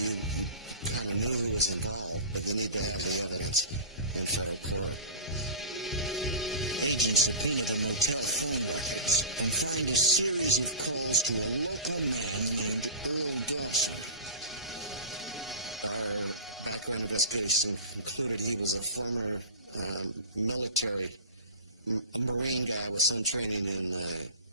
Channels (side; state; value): both; inverted; correlation -0.31